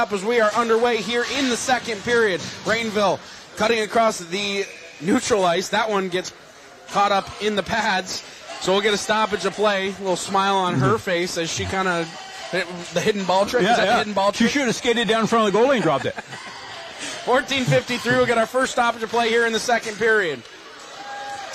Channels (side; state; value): both; identical; correlation 1.00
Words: as we are underway here in the second period. Rainville cutting across the neutral ice. That one gets caught up in the pads, so we'll get a stoppage of play. A little smile on her face as she kind of the hidden ball trick. Yeah, is that the hidden ball trick? She should have skated down in front of the goalie and dropped it. 14:53. We'll get our first stoppage of play here in the second period.